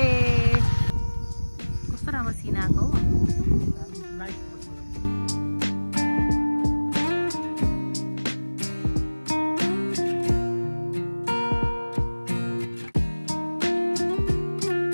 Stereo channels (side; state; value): both; inverted; correlation -1.00